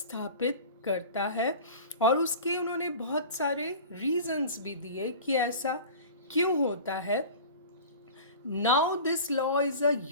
करता है और उसके उन्होंने बहुत सारे रीजंस भी दिए कि ऐसा क्यों होता है। Now this law is a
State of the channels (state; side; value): inverted; both; correlation -0.38